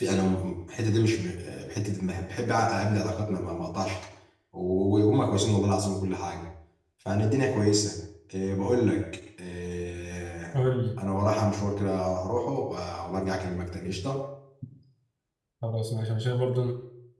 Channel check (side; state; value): both; identical; correlation 1.00